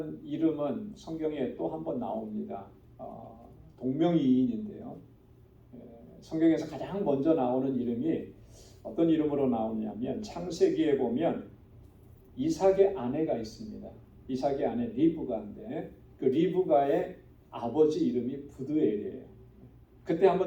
이름은 성경에 또 한 번 나옵니다. 동명이인인데요. 성경에서 가장 먼저 나오는 이름이 어떤 이름으로 나오냐면 창세기에 보면 이삭의 아내가 있습니다. 이삭의 아내 리브가인데 그 리브가의 아버지 이름이 부드엘이에요. 그때 한번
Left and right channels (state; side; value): identical; both; correlation 1.00